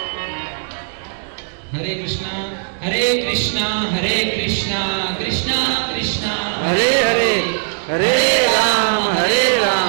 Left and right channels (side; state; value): left; silent; digital silence